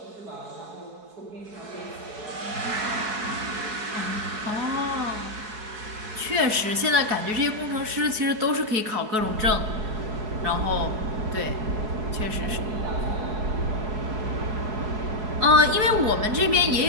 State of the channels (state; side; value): late; left; 4.7 ms